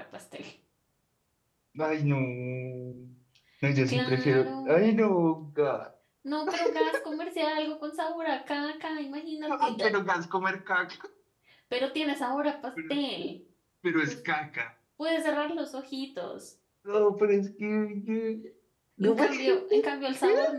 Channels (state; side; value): identical; both; correlation 1.00